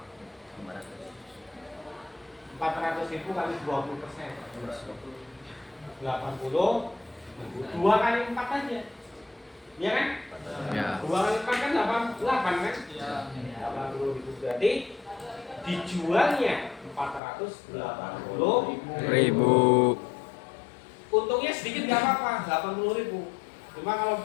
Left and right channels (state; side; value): drops out; right; at 17.2 s